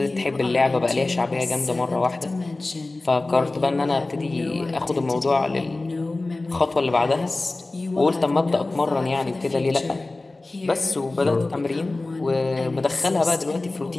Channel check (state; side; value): quieter; right; 3.1 dB